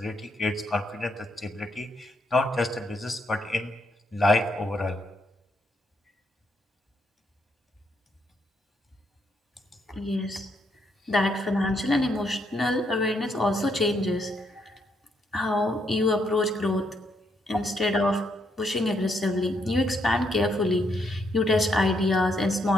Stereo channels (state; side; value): normal; both; correlation 0.75